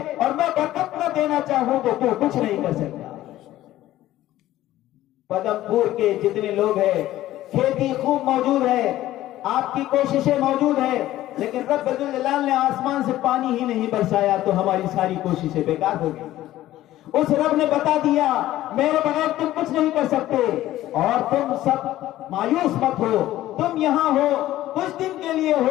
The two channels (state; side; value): quieter; right; 14.6 dB